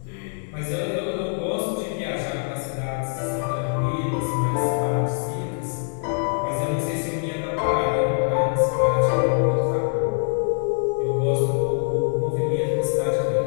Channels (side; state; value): right; silent; 56 dB below the other